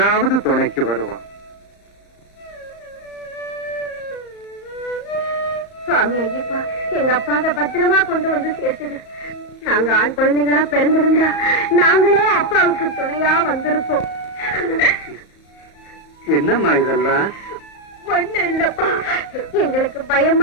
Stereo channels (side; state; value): right; late; 34 ms